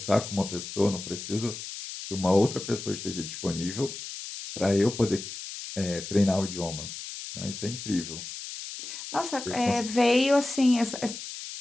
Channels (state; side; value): noise; left; hiss, 9 dB below the sound